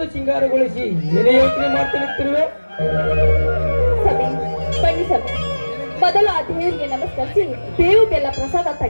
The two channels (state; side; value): inverted; both; correlation -1.00